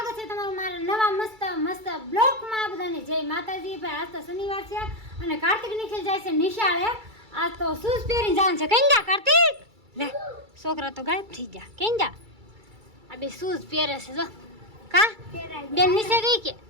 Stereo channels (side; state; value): left; late; 2.3 ms